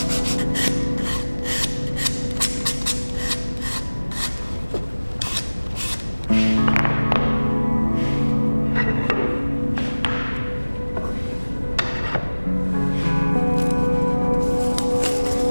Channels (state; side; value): inverted; both; correlation -1.00